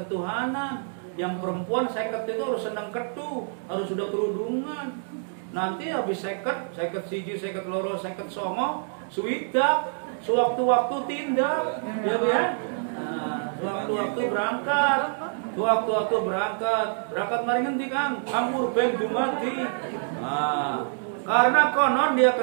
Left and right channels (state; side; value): silent; left; digital silence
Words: Yang perempuan 50 itu harus senang ketu, harus sudah kerudungan. Nanti habis 50, 51, 52, 59, suwidak, sewaktu-waktu tindak, ya Bu ya. Nah, sewaktu-waktu berangkat, sewaktu-waktu berangkat mari ngendi Kang? Anggur ben dumadi. Nah, karena konon dia